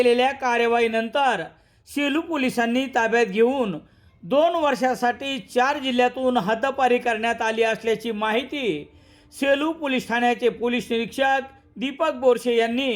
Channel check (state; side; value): identical; both; correlation 1.00